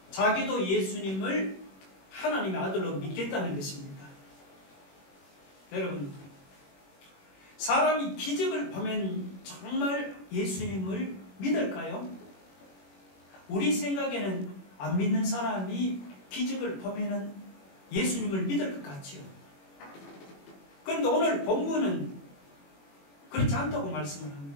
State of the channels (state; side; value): late; right; 21 ms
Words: 자기도 예수님을 하나님의 아들로 믿겠다는 것입니다. 여러분, 사람이 기적을 보면 정말 예수님을 믿을까요? 우리 생각에는 안 믿는 사람이 기적을 보면은 예수님을 믿을 것 같지요. 그런데 오늘 본문은 그렇지 않다고 말씀을